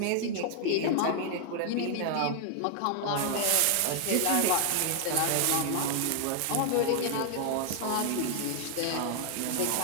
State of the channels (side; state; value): both; different; correlation 0.00